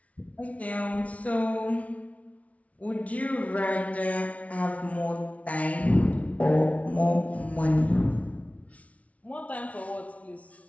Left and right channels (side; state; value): right; late; 0.067 ms